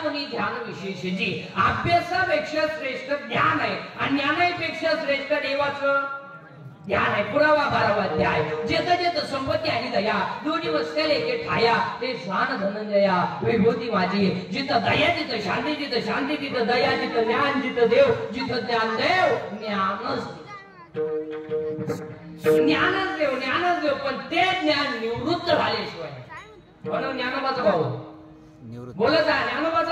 ध्यान विशेषची. अभ्यासापेक्षा श्रेष्ठ ज्ञान आहे आणि ज्ञानापेक्षा श्रेष्ठ देवाचं ध्यान आहे. पुरावा 12वा अध्याय. जेत संपत्ती आणि दया दोन्ही वसलेले एके ठाया, ते शान धनंजया विभूती माझी. जिथं दया तिथं शांती, जिथं शांती तिथं दया, जिथं ज्ञान जिथं देव, जिथं ज्ञान देव ज्ञानच ज्ञानच देव. पण ते ज्ञान निवृत्त झाल्याशिवाय. म्हणून ज्ञानोबाचा भाऊ बोलत आहे,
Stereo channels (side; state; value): both; identical; correlation 1.00